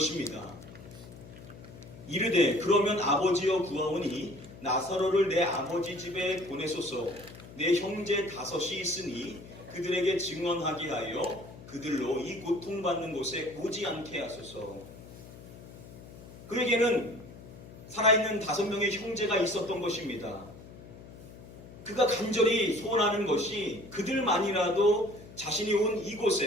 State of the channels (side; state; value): left; noise; hum, 17 dB below the sound